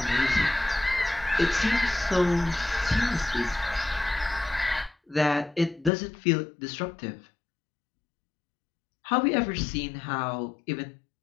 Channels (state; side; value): drops out; right; at 5.9 s